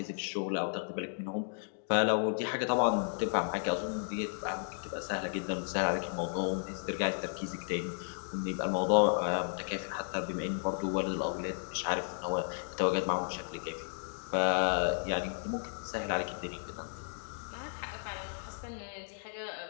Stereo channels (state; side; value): silent; right; digital silence